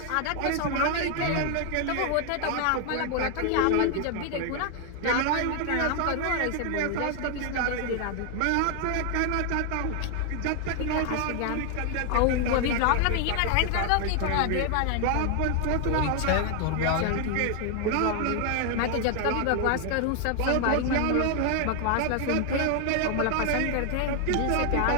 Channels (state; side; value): different; both; correlation 0.00